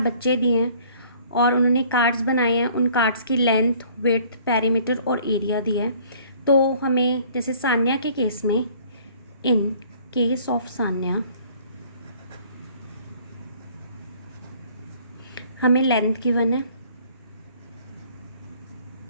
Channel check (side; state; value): both; inverted; correlation -0.55